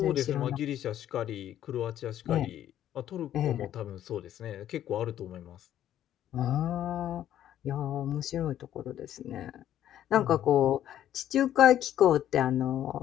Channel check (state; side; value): quieter; right; 11.5 dB